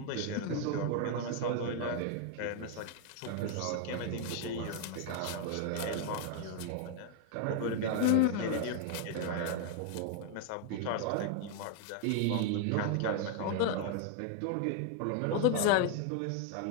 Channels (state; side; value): different; both; correlation 0.00